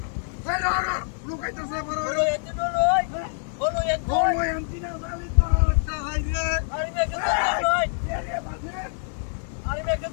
এই লড় লুকাইতাছে বড় হলো এত লই হলো এত বড় এন্টিনা জালি তো একটা হাই রে আরে মেকে ধরে লই এরে বাজে আরে মেকে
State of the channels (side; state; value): right; silent; digital silence